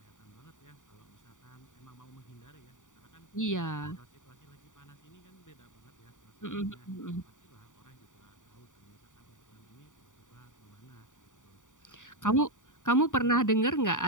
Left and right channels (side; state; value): right; late; 0.86 ms